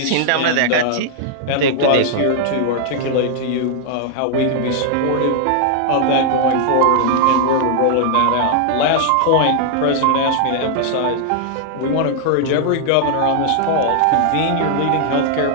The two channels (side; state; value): both; different; correlation 0.00